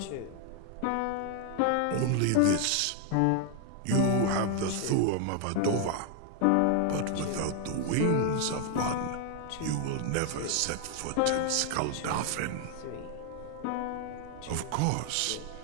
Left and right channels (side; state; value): both; different; correlation 0.00